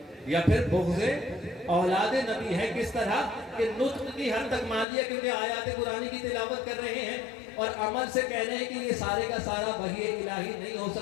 یا پھر بغض اولاد نبی ہے۔ کس طرح کہ نطق کی حد تک مان لیا کیونکہ آیات قرآنی کی تلاوت کر رہے ہیں اور عمل سے کہہ رہے ہیں کہ یہ سارے کا سارا وحی الہی نہیں ہو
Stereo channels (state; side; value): drops out; right; at 4.9 s